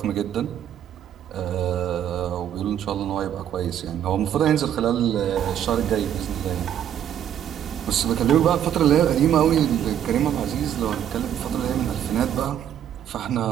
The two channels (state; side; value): quieter; left; 10.0 dB